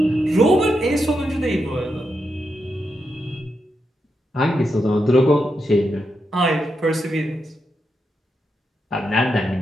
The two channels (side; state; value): both; normal; correlation 0.85